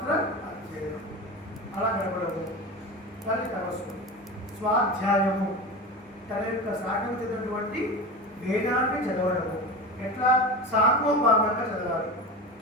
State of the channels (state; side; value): normal; both; correlation 0.26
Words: అధ్యయనం, అలా గడపడము. కానీ తపస్సు స్వాధ్యాయము, తన యొక్క సాగతినటువంటి వేదాన్ని చదవడము. ఎట్లా? సాంగోపాంగంగా చదవాలి.